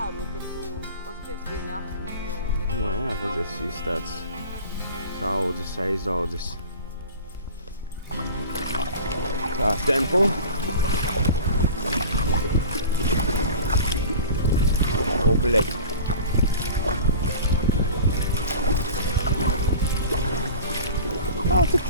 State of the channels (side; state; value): both; inverted; correlation -0.39